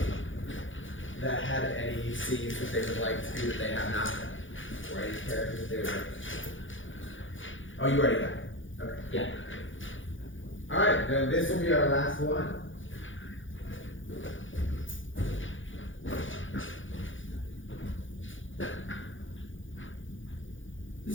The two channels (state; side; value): late; right; 0.56 ms